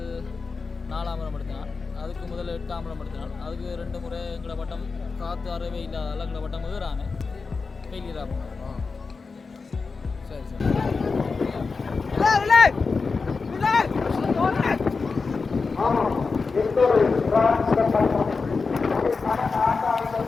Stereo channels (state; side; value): quieter; right; 4.5 dB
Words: 4ஆம் முறை எடுத்தினான். அதுக்கு முதல் 8ஆம் முறை எடுத்தினான். அதுக்கு 2 முறை எங்களோட பட்டம் காற்று அறவே இல்லாத எங்களோட பட்டம் ஏறாங்க ஃபெயிலியர் ஆகும். சரி